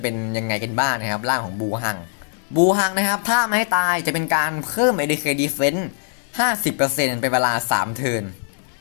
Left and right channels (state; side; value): silent; right; digital silence